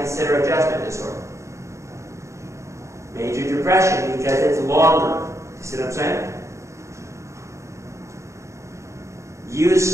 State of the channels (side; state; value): left; late; 0.14 ms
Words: adjustment disorder? Major depression, because it's longer. You see what I'm saying?